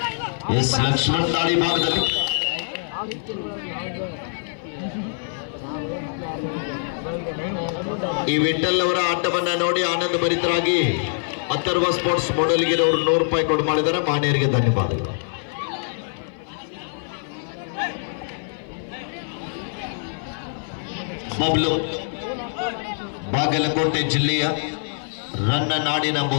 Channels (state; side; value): silent; right; 56 dB below the other